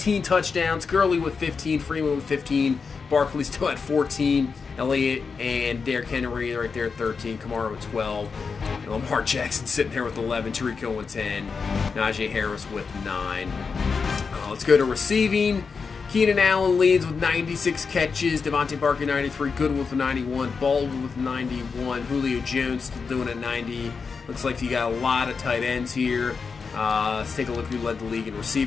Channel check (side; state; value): right; quieter; 5.2 dB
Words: touchdowns. Gurley with 15. Freeman with 15. Barkley still at 14. Elliott and Derrick Henry right there at 13. Kamara with 12. And Lamar Jackson sitting there with 11. Tariq Hill with 10. Najee Harris with 9. Let's go to receiving. Keenan Allen leads with 96 catches. Devontae Parker 93. Goodwin with 91. Baldwin with 91. Julio Jones still doing at 90. Looks like you got a lot of tight ends here. Let's take a look who led the league in